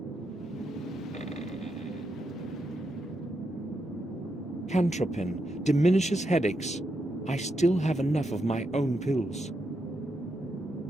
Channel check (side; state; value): both; normal; correlation 0.83